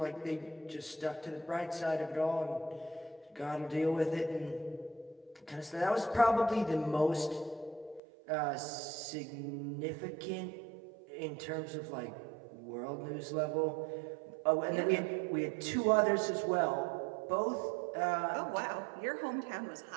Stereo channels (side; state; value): left; drops out; at 8.0 s